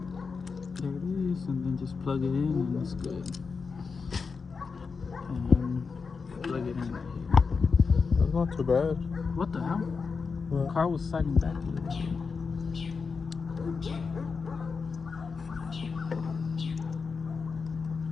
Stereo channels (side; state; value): right; quieter; 5.0 dB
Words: There it is, and then just plug it in and it's good. And then plug it in right here. That's not too bad. What the hell? What? The car was sliding back a little bit.